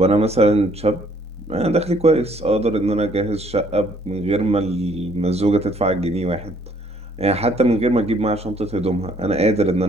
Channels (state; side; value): normal; both; correlation 0.63